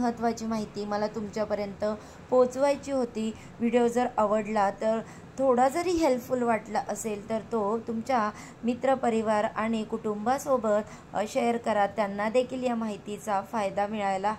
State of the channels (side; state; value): both; identical; correlation 1.00